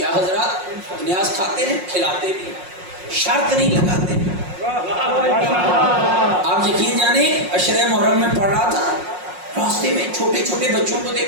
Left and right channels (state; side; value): late; left; 5.5 ms